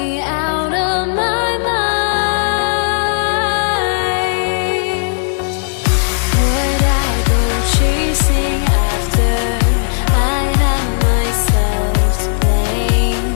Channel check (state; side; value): silent; right; digital silence